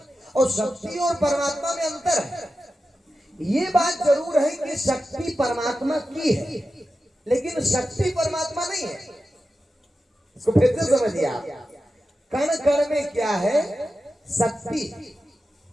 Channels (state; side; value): normal; both; correlation 0.92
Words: और शक्ति और परमात्मा में अंतर है। ये बात जरूर है कि शक्ति परमात्मा की है, लेकिन शक्ति परमात्मा नहीं है। इसको फिर से समझिए आप। कण कण में क्या है? शक्ति।